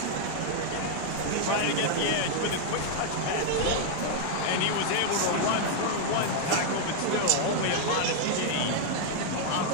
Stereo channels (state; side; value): different; both; correlation 0.00